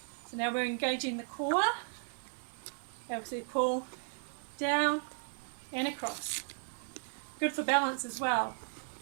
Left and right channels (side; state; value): left; silent; 54 dB below the other